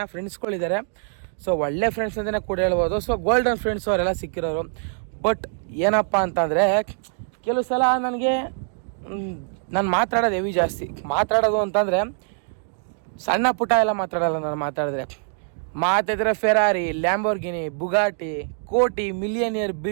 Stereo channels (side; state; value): left; silent; digital silence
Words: ಫ್ರೆಂಡ್ಸ್ಗಳಿದ್ದಾರೆ. ಸೊ ಒಳ್ಳೆ ಫ್ರೆಂಡ್ಸ್ ಅಂತಲೇ ಕೂಡ ಹೇಳ್ಬೋದು. ಸೊ ಗೋಲ್ಡನ್ ಫ್ರೆಂಡ್ಸ್ ಅವರೆಲ್ಲ ಸಿಕ್ಕಿರೋರು. ಬಟ್ ಏನಪ್ಪ ಅಂತಂದರೆ ಕೆಲವು ಸಲ ನನಗೆ ನಾನು ಮಾತಾಡೋದು ಹೆವಿ ಜಾಸ್ತಿ. ಮಾತಾಡೋದು ಅಂತಂದರೆ ಸಣ್ಣ ಪುಟ್ಟ ಎಲ್ಲ ಮಾತಾಡೋಲ್ಲ. ನಾನು ಮಾತಾಡಿದ್ರೆ ಫೆರಾರಿ, ಲ್ಯಾಂಬೋರ್ಗಿನಿ, ಬುಗಾಟಿ, ಕೋಟಿ, ಮಿಲಿಯನಿಯರ್,